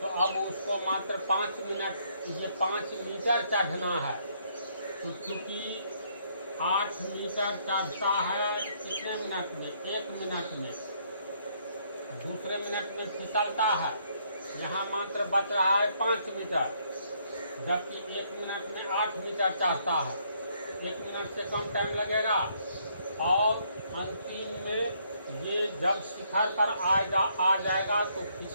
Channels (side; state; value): both; inverted; correlation -0.69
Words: तो अब उसको मात्र 5 मिनट, ये 5 मीटर चढ़ना है। तो चूंकि 8 मीटर चढ़ता है कितने मिनट में? 1 मिनट में। दूसरे मिनट में फिसलता है, यहाँ मात्र बच रहा है 5 मीटर, जबकि 1 मिनट में 8 मीटर चढ़ता है। 1 मिनट से कम टाइम लगेगा। और अंतिम में ये जब शिखर पर आ जाएगा तो